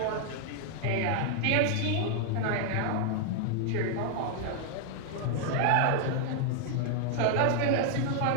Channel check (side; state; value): both; different; correlation -0.01